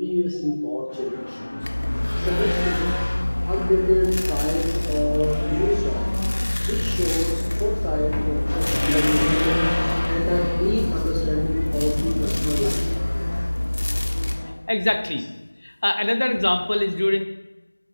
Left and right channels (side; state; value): both; inverted; correlation -1.00